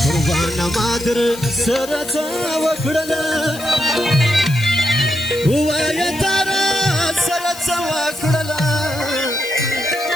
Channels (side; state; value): left; noise; hiss, 14 dB below the sound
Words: قربان مادر سره څه وکړله وایه تاره سره څه وکړله